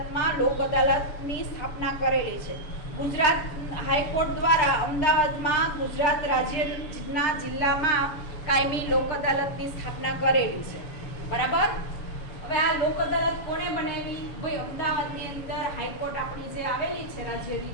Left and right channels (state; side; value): late; right; 7.0 ms